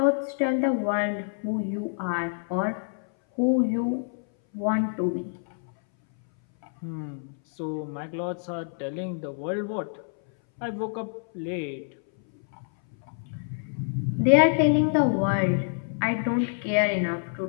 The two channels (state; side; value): silent; right; 59 dB below the other